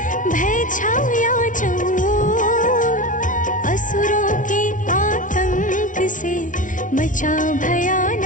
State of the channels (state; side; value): late; right; 0.38 ms